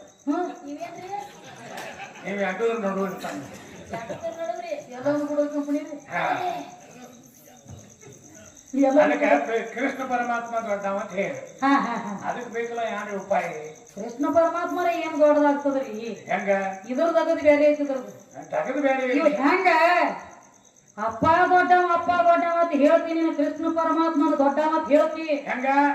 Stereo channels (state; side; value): identical; both; correlation 1.00